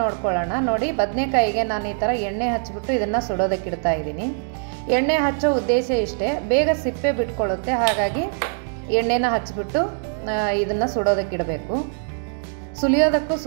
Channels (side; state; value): left; silent; digital silence